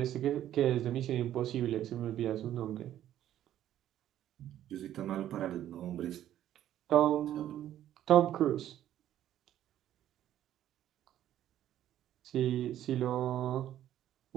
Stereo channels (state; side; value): quieter; left; 11.9 dB